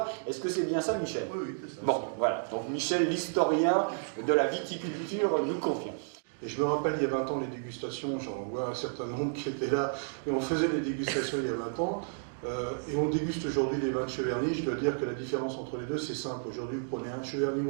Est-ce que c'est bien ça, Michel? Oui, c'est ça. Bon, voilà. Donc Michel, l'historien de la viticulture, nous confirme. Et je me rappelle, il y a 20 ans, les dégustations, j'en vois un certain nombre qui étaient là, et on faisait les dégustations il y a 20 ans, et on déguste aujourd'hui les vins de Cheverny. Je dois dire que la différence entre les deux, c'est simple. Aujourd'hui, vous prenez un Cheverny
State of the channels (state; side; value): silent; left; digital silence